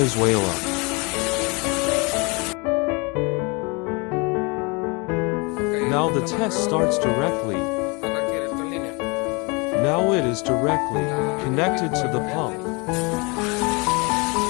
Now the test starts directly. Now it is directly connected to the pump.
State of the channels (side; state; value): right; quieter; 29.4 dB